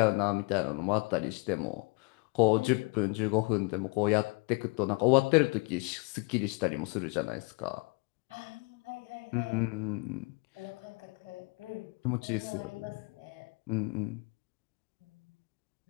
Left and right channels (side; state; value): right; quieter; 30.4 dB